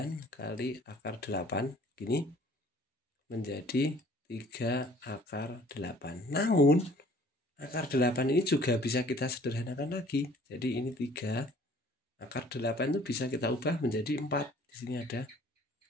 kali akar 8 gini menjadi 3 akar 8. Namun akar 8 ini juga bisa kita sederhanakan lagi. Jadi ini 3 akar 8 itu bisa kita ubah menjadi 4. Di sini ada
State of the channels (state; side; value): normal; both; correlation 0.54